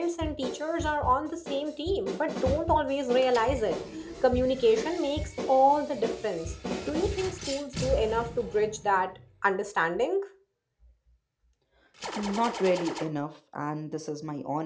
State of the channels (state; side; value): identical; both; correlation 1.00